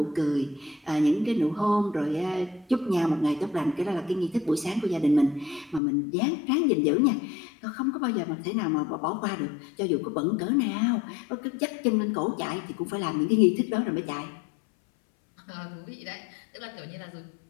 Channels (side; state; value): right; drops out; at 5.8 s